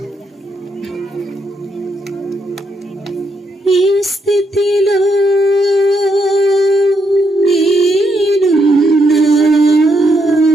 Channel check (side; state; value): both; normal; correlation 0.78